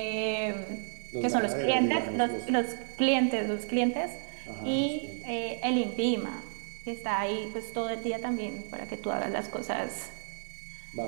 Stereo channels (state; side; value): silent; left; 57 dB below the other